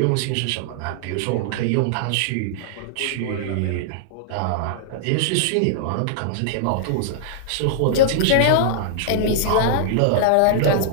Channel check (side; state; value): both; different; correlation -0.01